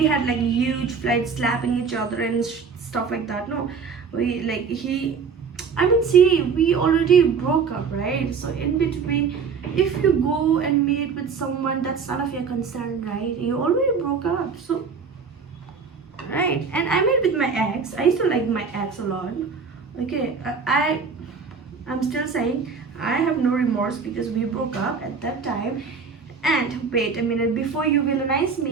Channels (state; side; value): quieter; left; 5.5 dB